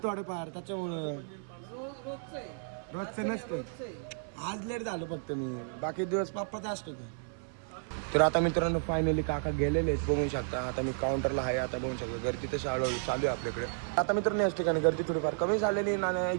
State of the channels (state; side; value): silent; left; 56 dB below the other